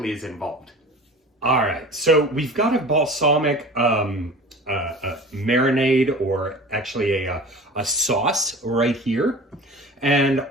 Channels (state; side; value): normal; both; correlation 0.39